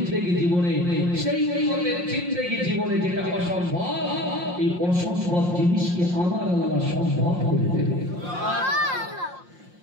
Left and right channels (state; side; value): late; left; 5.7 ms